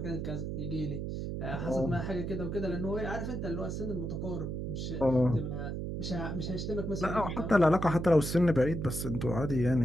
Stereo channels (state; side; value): noise; right; hum, 4 dB below the sound